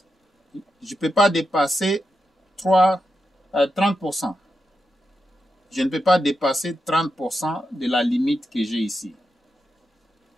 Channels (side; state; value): both; normal; correlation 0.87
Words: Je ne peux pas dépasser 30%. Je ne peux pas dépasser 30% de la limite que j'ai ici.